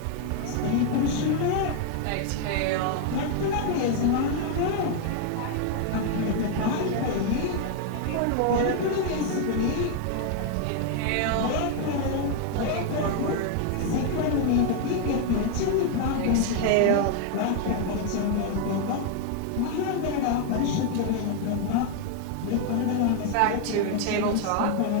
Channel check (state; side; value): different; both; correlation 0.00